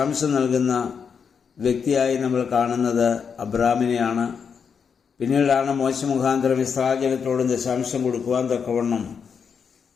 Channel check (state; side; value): quieter; right; 6.5 dB